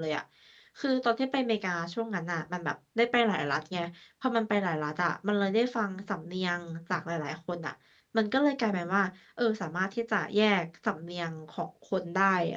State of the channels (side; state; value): both; identical; correlation 1.00